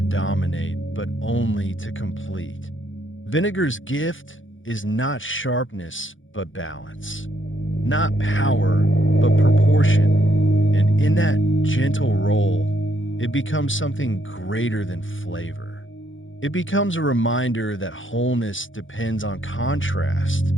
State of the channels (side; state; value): right; late; 0.57 ms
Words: dominate, but only to complete. Vinegar's gift is not sharpness, but balance. Not power, but proportion. And in that gentle roll, it becomes something greater than flavor. It becomes a reminder that wholeness depends on contrast,